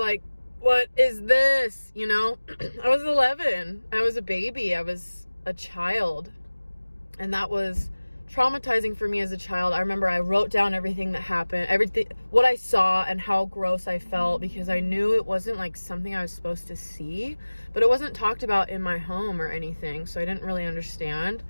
what is this? You know, I was 11. I was a baby. I was a child. And that was traumatizing for me as a child. I remember I wrote down everything that happened, what I saw and how gross I felt, because I knew it wasn't like something I was supposed to see, but it wasn't talked about in my home or anything. So I didn't really understand.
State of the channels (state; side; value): inverted; both; correlation -1.00